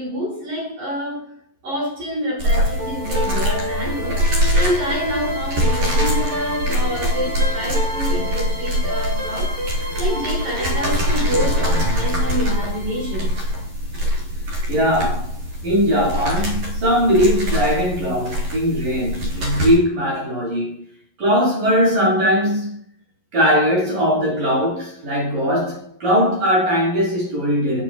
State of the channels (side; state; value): left; late; 11 ms